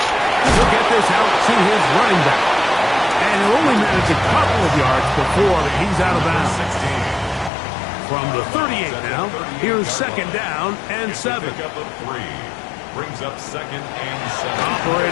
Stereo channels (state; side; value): drops out; right; at 7.5 s